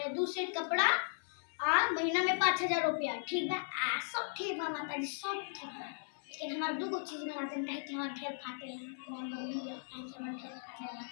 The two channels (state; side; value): silent; right; 53 dB below the other